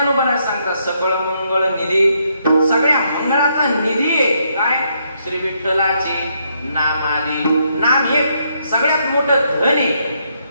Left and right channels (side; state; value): both; inverted; correlation -0.75